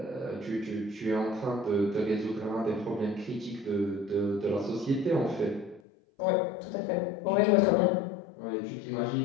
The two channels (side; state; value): right; drops out; at 5.8 s